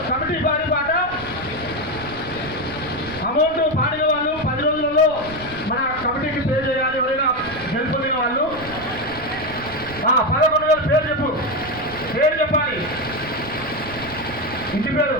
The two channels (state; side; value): noise; right; rumble, 16 dB below the sound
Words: కమిటీ వారి పాట. అమౌంట్ పాడిన వాళ్ళు 10 రోజులలో మన కమిటీకి పే చేయాలి. ఎవరైనా గెలుపొందిన వాళ్ళు 11,000 పేరు చెప్పు, పేరు చెప్పాలి. ఇంటి పేరు